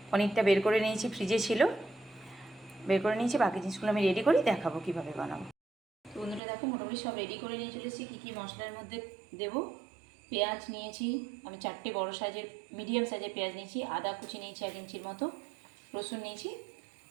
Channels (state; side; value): drops out; left; at 6.4 s